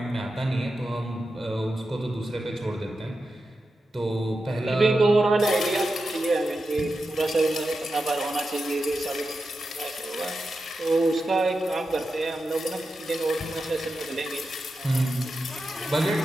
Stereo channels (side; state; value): both; normal; correlation 0.90